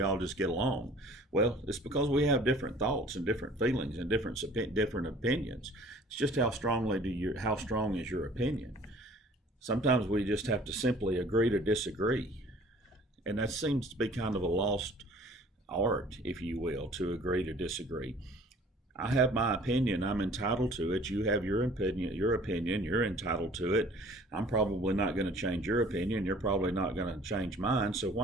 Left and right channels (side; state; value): both; normal; correlation 0.51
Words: all just get along? Well, it's because we have different thoughts and different feelings and different opinions. It's just how strong is your opinion? Sometimes we just have to simply agree to disagree. And that seems to be kind of a lost art, if you will, to agree to disagree. I have my opinion. I'm entitled to it. You have your opinion. You're entitled to it. I'm probably not going to change your opinion. You're probably not going to change mine. So